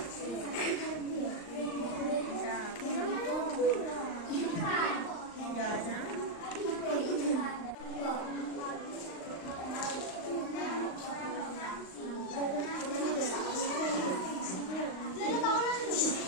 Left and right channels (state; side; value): late; right; 38 ms